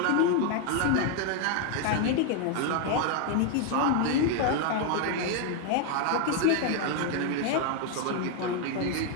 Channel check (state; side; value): different; both; correlation 0.00